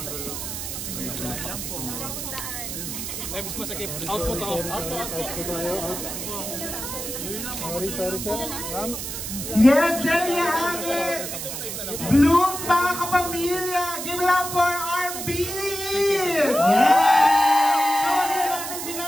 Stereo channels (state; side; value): noise; right; hiss, 6 dB below the sound